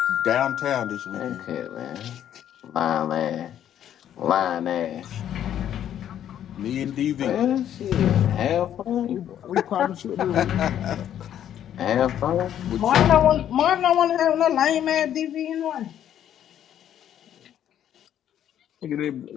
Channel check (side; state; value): right; quieter; 10.5 dB